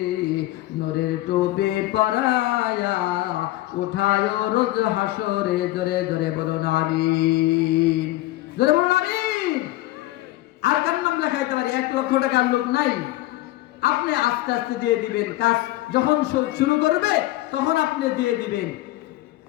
নূরের টুপি পরায়া উঠায় রোজ হাসরে। জোরে জোরে বলুন আমিন, জোরে বলুন আমিন। আর কার নাম লেখাইতে পারি? 1,00,000 টাকার লোক নাই। আপনি আস্তে আস্তে দিয়ে দিবেন, কাজ যখন শুরু করবে তখন আপনি দিয়ে দিবেন।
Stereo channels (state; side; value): quieter; right; 17.1 dB